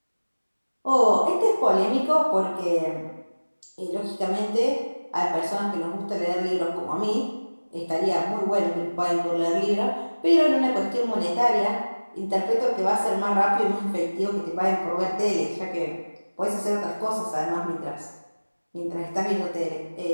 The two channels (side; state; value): both; inverted; correlation -1.00